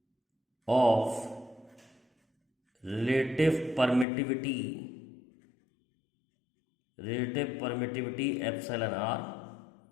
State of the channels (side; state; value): right; drops out; at 4.0 s